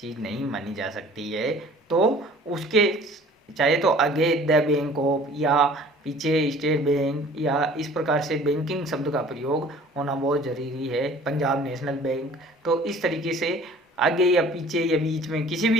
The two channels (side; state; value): both; normal; correlation 0.49